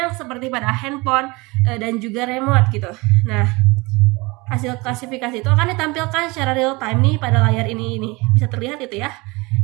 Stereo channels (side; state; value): left; quieter; 24.6 dB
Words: seperti pada handphone dan juga remote gitu. Nah, hasil klasifikasi itu akan ditampilkan secara real time nih pada layar ini bisa terlihat itu ya,